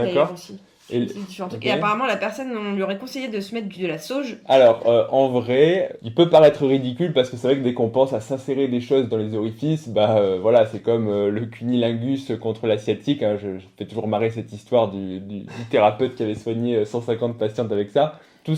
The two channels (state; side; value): identical; both; correlation 1.00